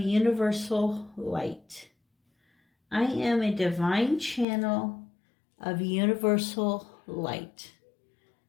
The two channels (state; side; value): drops out; right; at 4.5 s